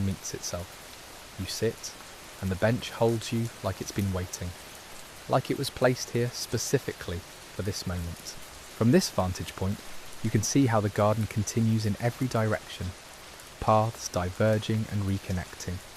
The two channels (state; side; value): identical; both; correlation 1.00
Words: meets itself. You sit, and the bench holds you like it's been waiting, like it was placed here specifically for this moment. From this vantage point, you can see how the garden continues in every direction, paths diverging and reconnecting,